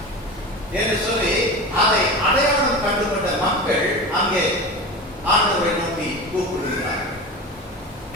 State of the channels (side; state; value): both; normal; correlation 0.29